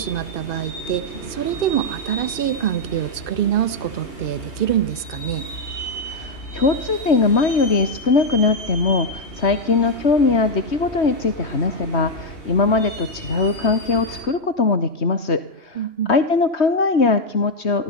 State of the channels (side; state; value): right; late; 2.6 ms